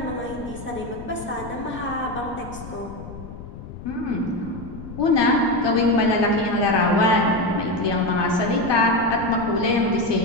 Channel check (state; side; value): noise; left; rumble, 13 dB below the sound